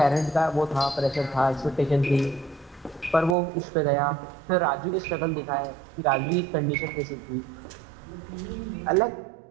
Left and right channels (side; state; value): left; drops out; at 3.4 s